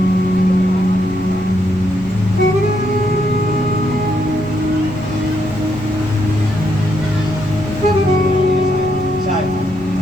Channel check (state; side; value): noise; left; rumble, 15 dB below the sound